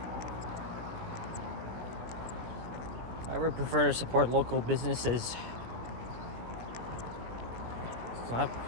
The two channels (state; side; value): late; left; 17 ms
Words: I would prefer to support local businesses. So I'm